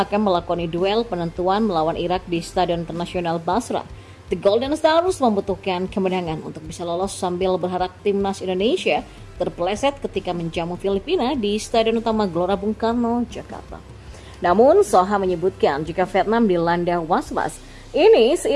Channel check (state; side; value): identical; both; correlation 1.00